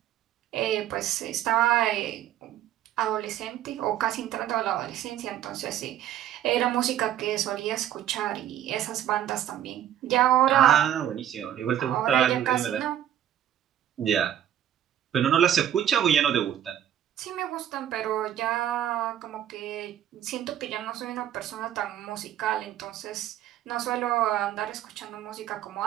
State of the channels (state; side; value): quieter; left; 11.0 dB